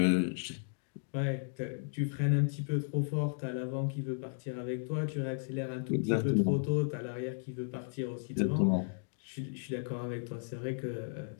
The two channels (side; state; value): right; silent; digital silence